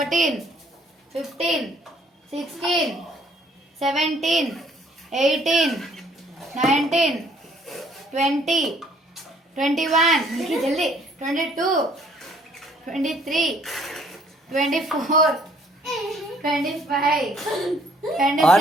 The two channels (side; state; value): both; normal; correlation 0.62